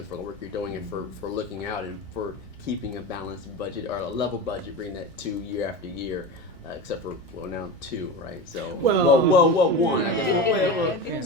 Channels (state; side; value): normal; both; correlation 0.25